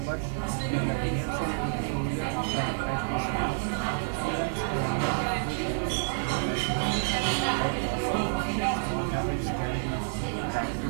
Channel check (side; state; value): left; silent; digital silence